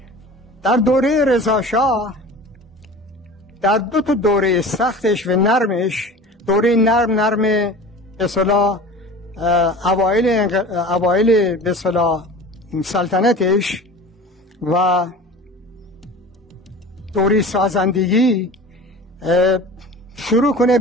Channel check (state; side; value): normal; both; correlation 0.38